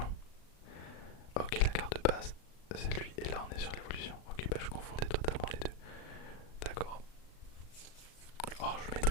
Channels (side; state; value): right; late; 37 ms